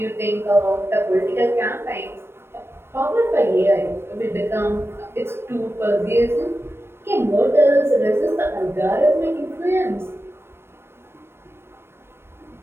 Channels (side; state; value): left; late; 0.12 ms